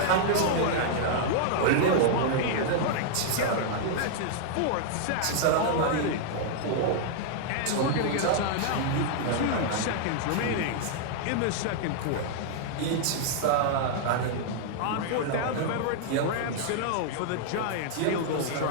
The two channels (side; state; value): both; different; correlation -0.01